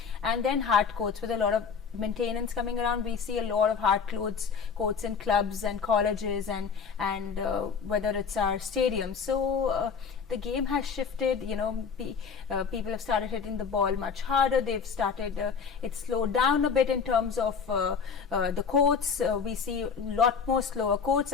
and then hard courts with a lot of maintenance coming around. We see a lot of hard courts in clubs and colleges and whether it's our stadiums. So the game has shifted. People have started hitting the ball much harder. They've started it's slowed down a bit in terms of the courts. We see a lot more slower courts.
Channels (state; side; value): quieter; right; 5.9 dB